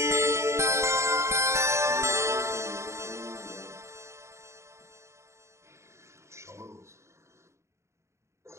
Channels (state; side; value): late; left; 0.14 ms